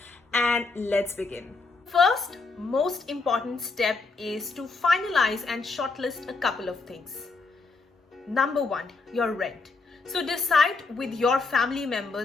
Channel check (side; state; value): right; quieter; 4.0 dB